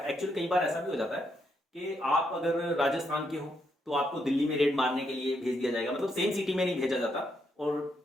एक्चुअली कई बार ऐसा भी हो जाता है कि आप अगर राजस्थान के हो तो आपको दिल्ली में रेड मारने के लिए भेज दिया जाएगा, मतलब सेम सिटी में नहीं भेजा जाता, और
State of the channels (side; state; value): both; normal; correlation 0.78